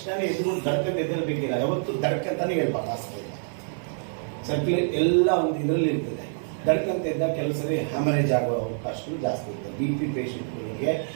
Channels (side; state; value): left; silent; 61 dB below the other